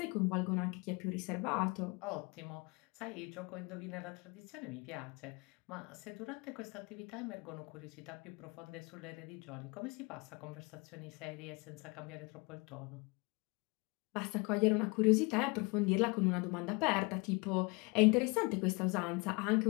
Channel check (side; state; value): right; quieter; 28.5 dB